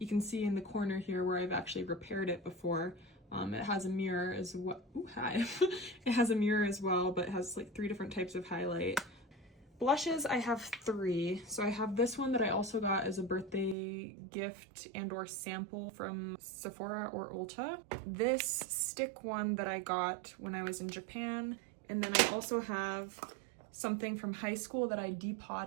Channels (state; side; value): drops out; left; at 13.8 s